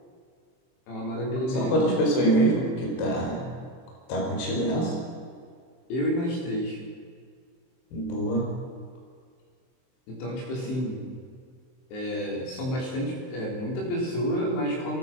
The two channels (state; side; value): late; right; 23 ms